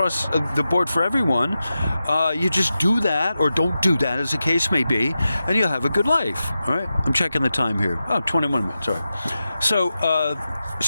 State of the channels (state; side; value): inverted; both; correlation -0.92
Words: the board for everyone. You just do that or don't do that, as the case may be, and you'll have a good life. All right, I'm checking the time here. 21 minutes. All right.